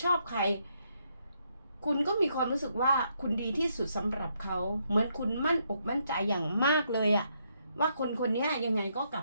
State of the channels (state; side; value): inverted; both; correlation -0.76